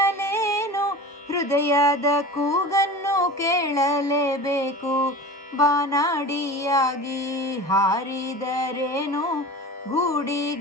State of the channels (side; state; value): both; normal; correlation 0.34